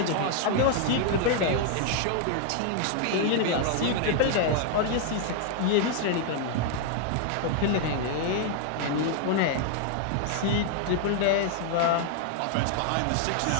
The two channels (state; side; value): different; both; correlation 0.00